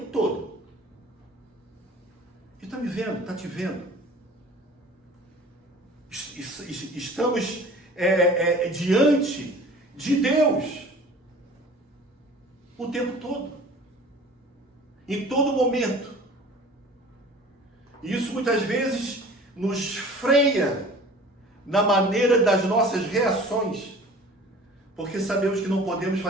todo. Ele está me vendo, está te vendo. Estamos diante de Deus o tempo todo, em todo momento. E isso muitas vezes nos freia na maneira das nossas reações, porque sabemos que não podemos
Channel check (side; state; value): both; normal; correlation 0.45